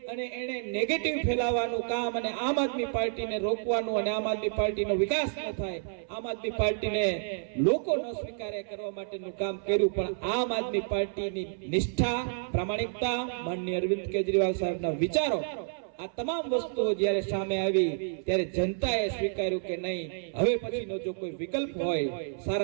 અને એને નેગેટિવ ફેલાવવાનું કામ અને આમ આદમી પાર્ટીને રોકવાનું અને આમ આદમી પાર્ટીનો વિકાસ ન થાય, આમ આદમી પાર્ટીને લોકો ન સ્વીકારે કરવા માટેનું કામ કર્યું. પણ આમ આદમી પાર્ટીની નિષ્ઠા, પ્રામાણિકતા, માનનીય અરવિંદ કેજરીવાલ સાહેબના વિચારો, આ તમામ વસ્તુઓ જ્યારે સામે આવી ત્યારે જનતાએ સ્વીકાર્યું કે નહીં, હવે પછીનો જો કોઈ વિકલ્પ હોય,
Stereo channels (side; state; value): left; silent; 58 dB below the other